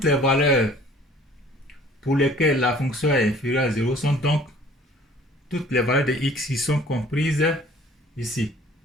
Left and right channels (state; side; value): normal; both; correlation 0.52